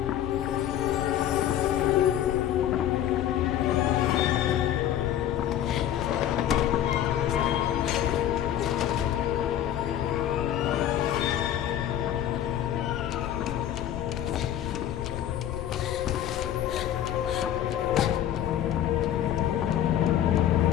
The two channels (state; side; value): quieter; right; 11.2 dB